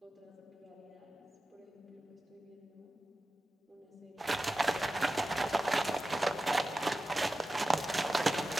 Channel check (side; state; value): both; normal; correlation 0.94